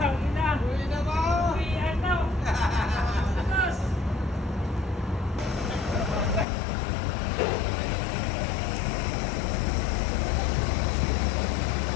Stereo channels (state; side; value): drops out; right; at 6.5 s